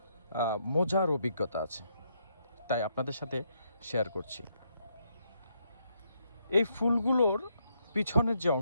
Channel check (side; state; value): both; inverted; correlation -0.77